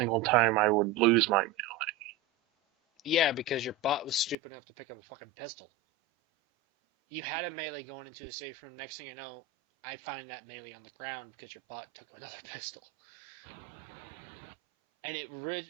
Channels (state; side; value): drops out; left; at 4.4 s